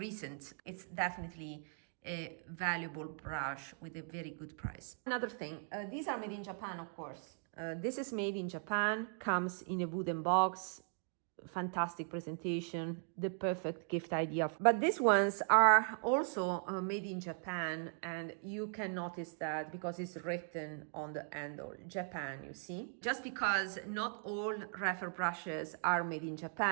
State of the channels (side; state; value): left; silent; 52 dB below the other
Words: It's definitely a valuable brush with a very good price. Another thing, these are made in Japan, of course. This is made in Japan, comes in a wooden box, fantastic presentation, the perfect gift idea. But these ones are also made in Japan, and you can notice that because it's written on the handle, Japan, you see. Just because not all Rephr brushes are made in